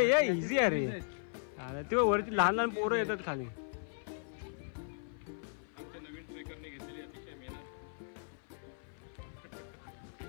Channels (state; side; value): silent; right; 53 dB below the other